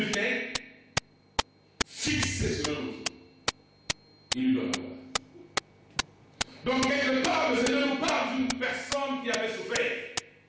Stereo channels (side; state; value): both; identical; correlation 1.00